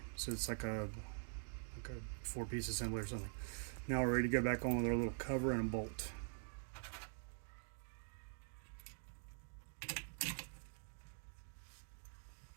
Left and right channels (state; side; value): silent; left; digital silence